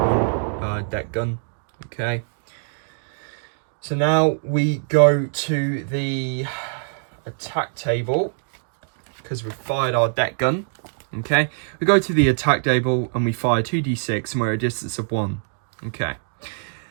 deck gun. Okay. So now we go to the attack table because we've fired our deck gun. Okay. We go to the attack table and we fire 2d6 and we're at a distance of 1. Okay.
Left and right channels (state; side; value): silent; left; digital silence